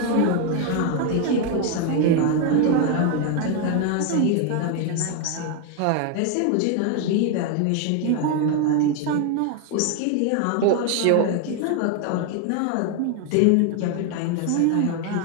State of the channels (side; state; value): both; different; correlation 0.01